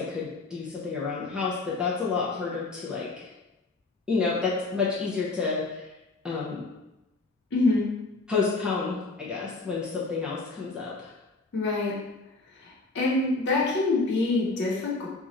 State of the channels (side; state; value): right; quieter; 3.4 dB